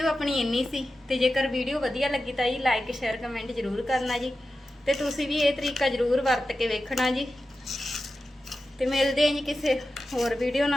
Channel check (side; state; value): both; normal; correlation 0.92